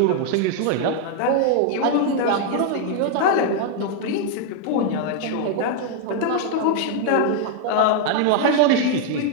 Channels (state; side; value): different; both; correlation 0.00